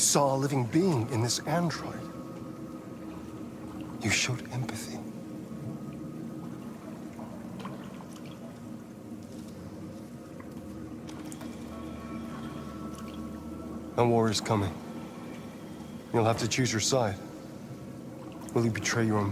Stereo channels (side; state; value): both; identical; correlation 1.00